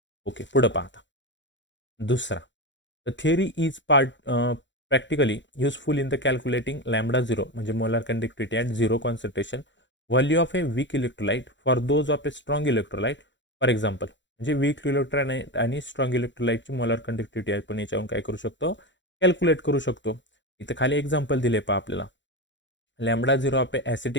ओके, पुढं पाहता दुसरा. The theory is practically useful in the calculating lambda zero, म्हणजे molar conductivity at zero concentration, value of a weak electrolyte for those of a strong electrolyte. For example, म्हणजे weak electrolyte आणि strong इलेक्ट्रोलाइटची molar conductivity आपण याच्यावरून काय करू शकतो, calculate करू शकतो. इथं खाली एक्झाम्पल दिले पहा आपल्याला. Lambda zero of A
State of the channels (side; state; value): right; late; 0.53 ms